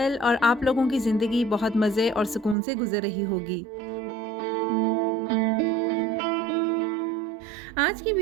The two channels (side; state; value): left; drops out; at 2.6 s